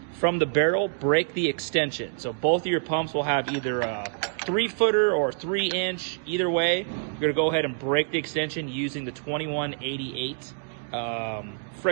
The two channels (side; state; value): left; silent; digital silence